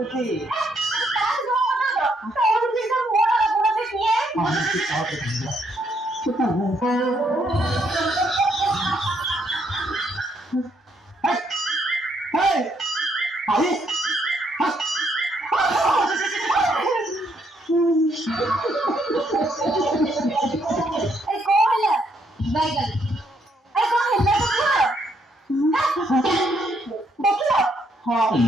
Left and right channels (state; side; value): normal; both; correlation 0.73